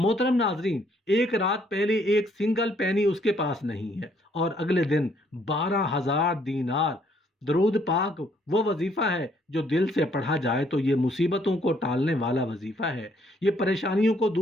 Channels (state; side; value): normal; both; correlation 0.67